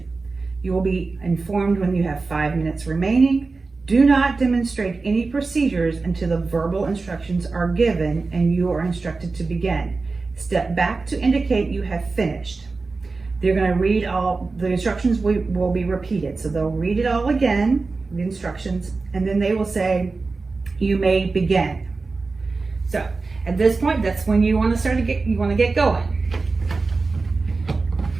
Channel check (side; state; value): left; quieter; 3.9 dB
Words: You will be informed when you have 5 minutes remaining. Do not demonstrate any procedures until the verbal instructions are given and you are instructed to begin. Step back to indicate you have finished. They're going to read all the instructions. Will be repeated, so they'll read it all again, the instructions, and then they will say, "You may begin." So at this point, that's when you want to start to get going.